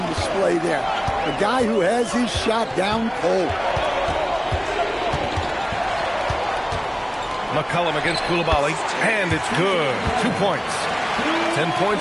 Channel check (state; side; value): identical; both; correlation 1.00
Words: display there. A guy who has his shot down cold. McCollum against Coulibaly, and it's good. 2 points. 10